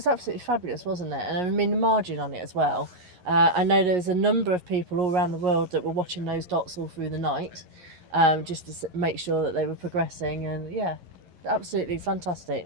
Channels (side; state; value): left; late; 11 ms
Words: absolutely fabulous, wasn't it? And I mean the margin on it as well. I know there was a number of people all around the world that were watching those dots all through the night, just to make sure that they were progressing, and absolutely